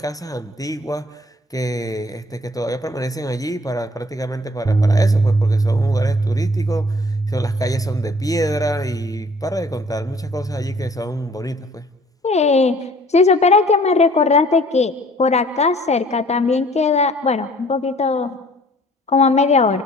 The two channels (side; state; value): both; normal; correlation 0.55